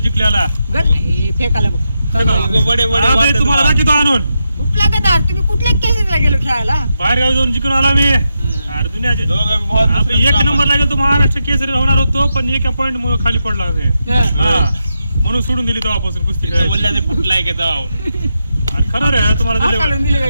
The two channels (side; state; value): both; inverted; correlation -0.86